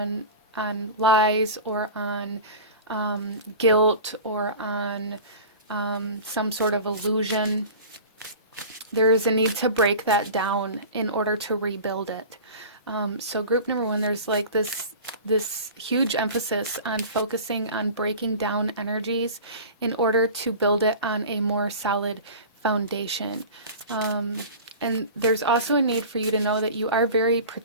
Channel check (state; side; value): inverted; both; correlation -0.36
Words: lies, or on guilt, or on some sort of illusion, there is a need to break that down in order to rebuild it. So group number 1, there's like this huge emphasis on focusing on breaking down energies in order to build it on a more solid foundation. And there's also a need for you to know that you are very